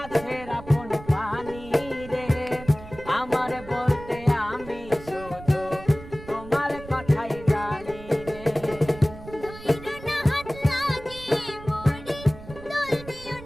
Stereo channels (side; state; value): right; noise; rumble, 15 dB below the sound